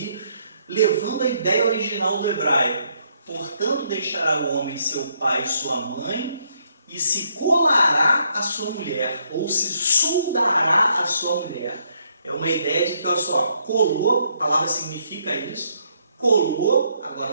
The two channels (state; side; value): inverted; both; correlation -0.72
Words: levando a ideia original do hebraico. Portanto, deixará o homem seu pai e sua mãe, e se colará a sua mulher, ou se soldará a sua mulher. É uma ideia de que, olha só, colou, a palavra significa isso, colou,